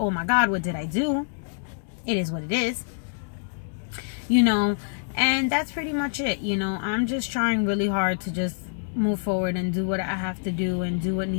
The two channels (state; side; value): silent; right; 61 dB below the other